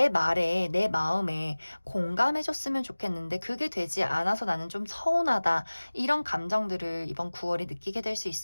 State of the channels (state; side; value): inverted; both; correlation -1.00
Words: 말에 내 마음에 공감해줬으면 좋겠는데 그게 되지 않아서 나는 좀 서운하다 이런 감정들을 이번 9월에 느끼게 될 수